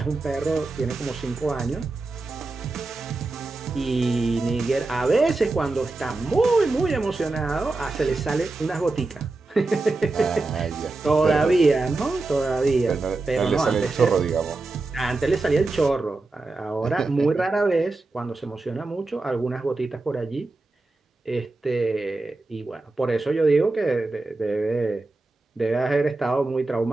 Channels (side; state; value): left; quieter; 3.3 dB